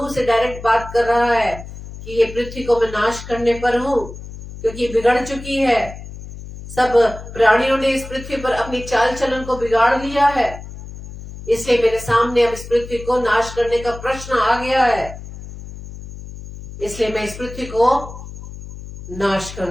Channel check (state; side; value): noise; left; hum, 13 dB below the sound